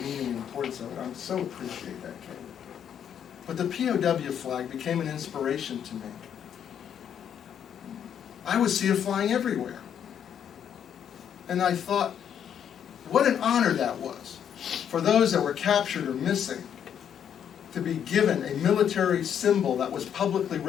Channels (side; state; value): right; quieter; 8.8 dB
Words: and importance of it. I so appreciate that, Kay. But the POW flag became an inspiration to me. I would see it flying everywhere. And I thought, what an honor that was for those that were captured or missing to be given a military symbol that was publicly